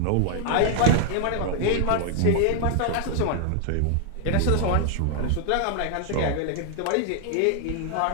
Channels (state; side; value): different; both; correlation 0.00